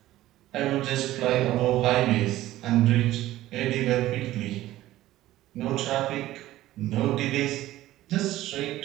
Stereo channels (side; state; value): left; quieter; 15.3 dB